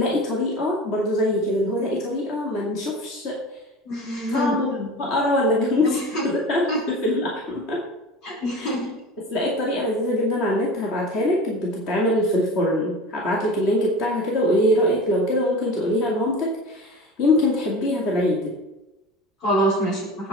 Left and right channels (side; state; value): both; normal; correlation 0.34